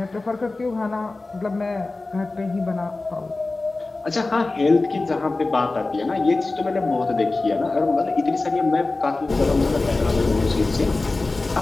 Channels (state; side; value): quieter; right; 3.3 dB